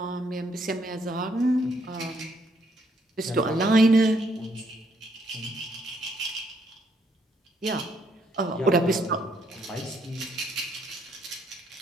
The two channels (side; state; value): both; normal; correlation 0.71